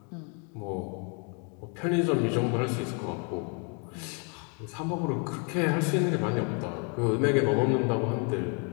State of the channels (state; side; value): quieter; right; 37.2 dB